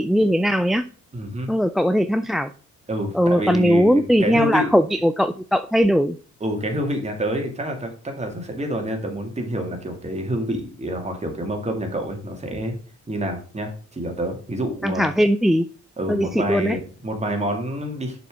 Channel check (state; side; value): normal; both; correlation 0.83